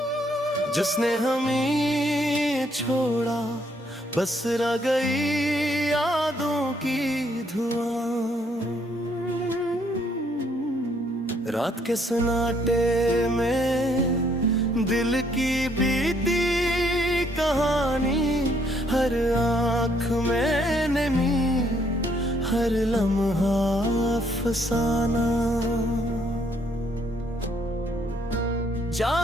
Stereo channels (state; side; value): normal; both; correlation 0.69